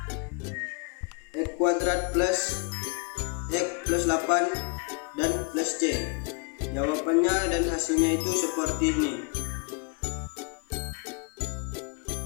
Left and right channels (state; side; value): quieter; right; 32.9 dB